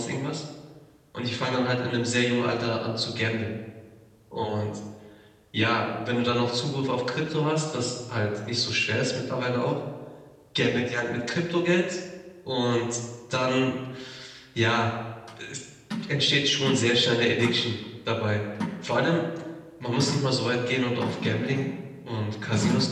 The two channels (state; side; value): identical; both; correlation 1.00